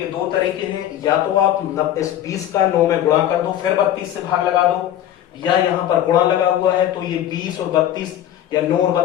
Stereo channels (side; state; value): right; quieter; 11.6 dB